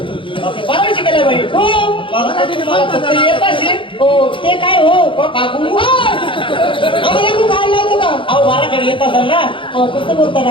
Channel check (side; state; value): right; late; 0.25 ms